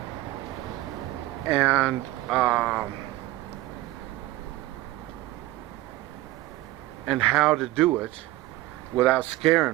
and how to do it without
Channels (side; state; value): left; quieter; 17.3 dB